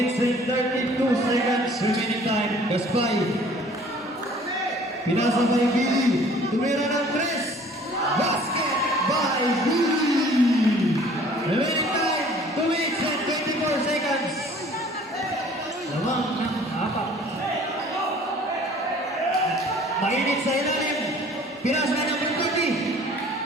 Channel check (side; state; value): both; normal; correlation 0.52